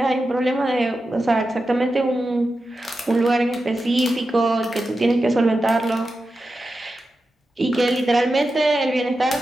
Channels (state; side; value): normal; both; correlation 0.91